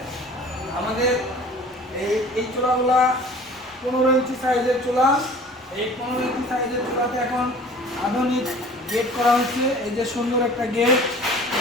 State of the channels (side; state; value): both; normal; correlation 0.46